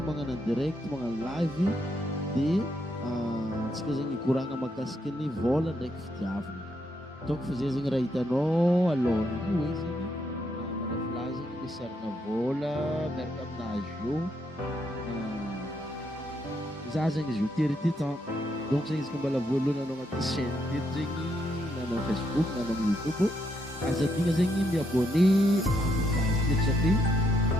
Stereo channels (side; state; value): both; normal; correlation 0.77